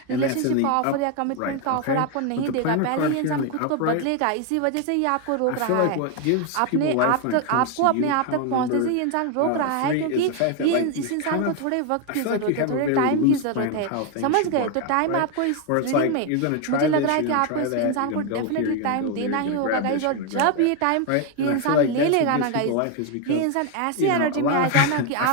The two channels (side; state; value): both; different; correlation 0.01